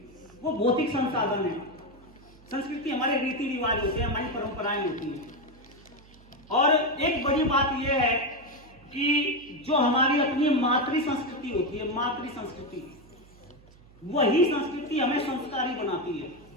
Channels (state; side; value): noise; right; hum, 25 dB below the sound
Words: वो भौतिक संसाधन है। संस्कृति हमारे रीति रिवाज होते हैं, हमारी परंपराएं होती हैं। और एक बड़ी बात यह है कि जो हमारी अपनी मातृ संस्कृति होती है, मातृ संस्कृति, वही संस्कृति हमें संस्कारी बनाती है।